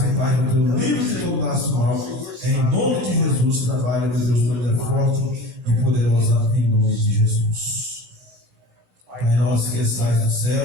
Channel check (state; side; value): late; left; 17 ms